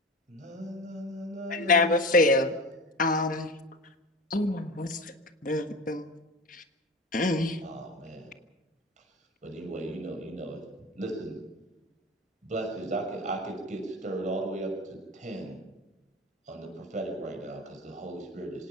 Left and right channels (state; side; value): normal; both; correlation 0.31